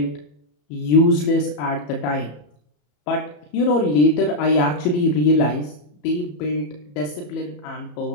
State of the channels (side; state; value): right; late; 34 ms